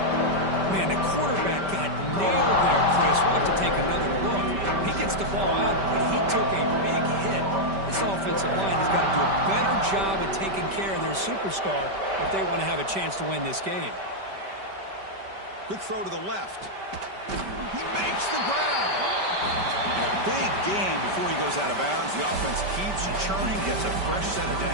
Man, the quarterback got nailed there, Chris. We'll have to take another look. He gets the ball out, but he took a big hit. This offensive line has got to do a better job at taking care of their superstar if they want to have a chance to win this game. Quick throw to the left. He makes the grab. And a big gain before he goes out of bounds. The offense keeps churning, gets a fresh set of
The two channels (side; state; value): left; late; 5.1 ms